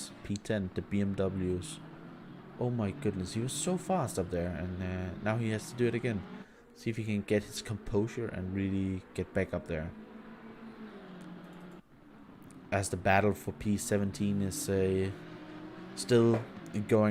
P10, the BMWs. Oh my goodness, he was so fast up there, and now he has to do it again. See if he can get his composure and really get back up there. As the battle for P17 is still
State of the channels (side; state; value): both; identical; correlation 1.00